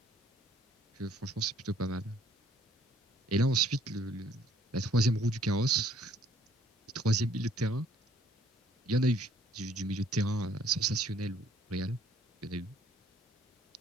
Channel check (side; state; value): both; normal; correlation 0.61